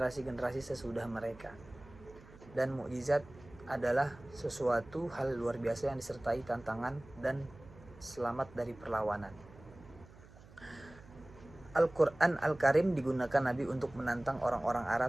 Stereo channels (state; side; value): noise; right; hum, 21 dB below the sound